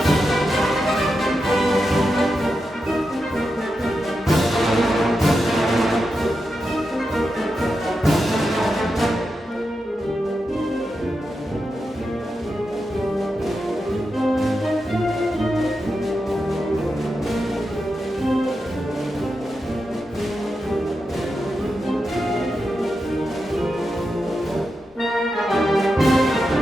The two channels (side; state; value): both; normal; correlation 0.88